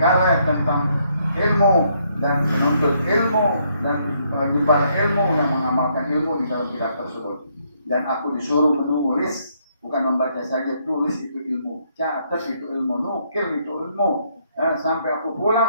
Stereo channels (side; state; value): both; inverted; correlation -0.72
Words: tentang ilmu dan menuntut ilmu dan menyebar ilmu yang mengamalkan ilmu di dalam kitab tersebut. Dan aku disuruh menulis, bukan membaca saja, tulis itu ilmu, catat itu ilmu, nukil itu ilmu. Sampai aku